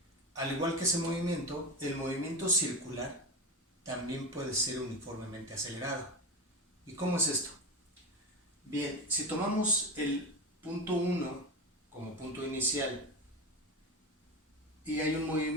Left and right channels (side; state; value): both; normal; correlation 0.22